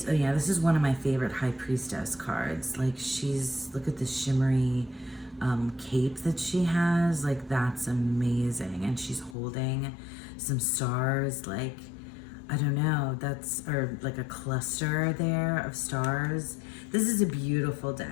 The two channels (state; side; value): drops out; right; at 9.3 s